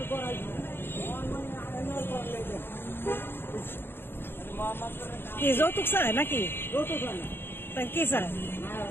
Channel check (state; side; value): late; right; 0.10 ms